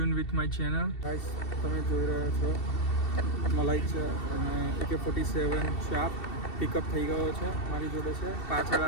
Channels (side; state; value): right; late; 2.7 ms